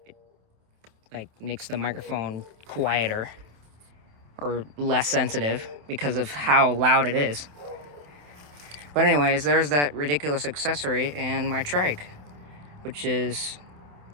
like makes the microphone quieter or less sensitive because of how loud it is. But anyways, there's that ridiculous accessory and my trike, which is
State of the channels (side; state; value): left; late; 27 ms